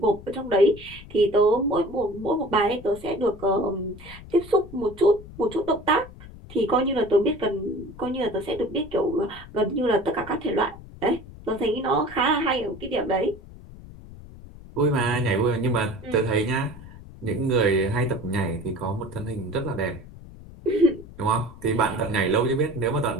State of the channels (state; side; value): noise; left; rumble, 17 dB below the sound